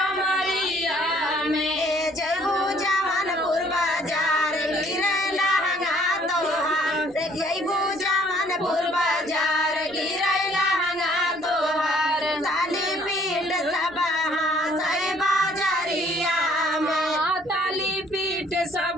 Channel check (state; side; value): noise; right; rumble, 27 dB below the sound